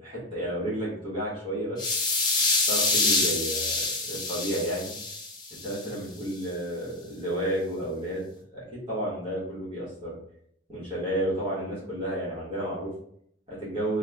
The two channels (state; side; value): normal; both; correlation 0.14